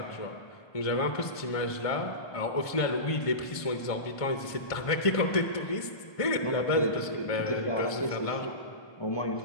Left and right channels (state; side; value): late; right; 1.5 ms